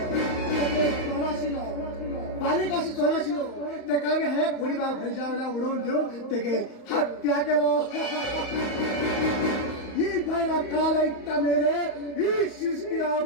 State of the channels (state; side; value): late; right; 34 ms